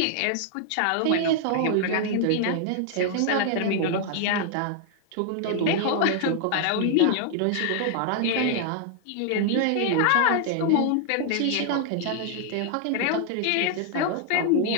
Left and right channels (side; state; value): both; different; correlation 0.00